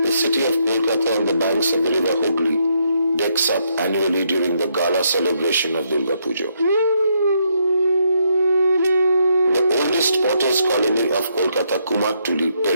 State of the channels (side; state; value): both; inverted; correlation -0.75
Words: The city of Kolkata on the banks of the river Hooghly decks up annually during the gala celebration of Durga Puja. The oldest potters' colony of Kolkata, Kumartuli,